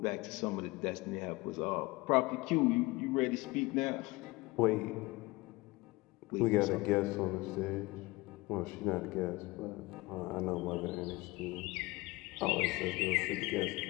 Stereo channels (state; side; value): quieter; right; 22.3 dB